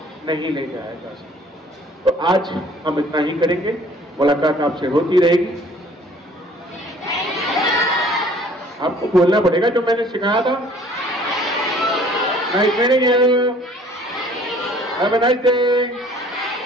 नहीं ले जाया जा सकता। तो आज हम इतना ही करेंगे, मुलाकात आपसे होती रहेगी। आपको बोलना पड़ेगा जो मैंने सिखाया था। Nice meeting you, have a nice day.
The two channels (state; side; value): normal; both; correlation 0.54